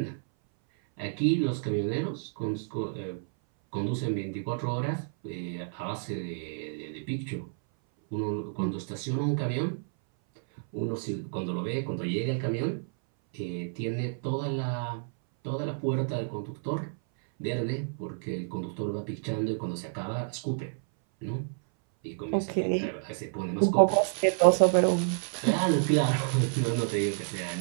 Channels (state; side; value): silent; left; 58 dB below the other